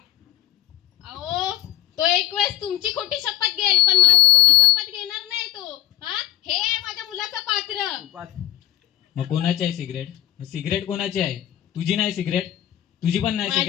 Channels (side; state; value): right; quieter; 14.0 dB